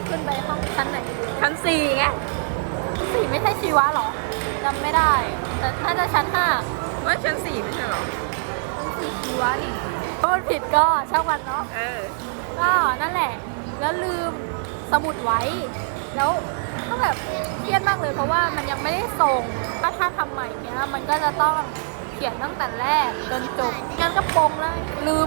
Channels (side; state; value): left; silent; 63 dB below the other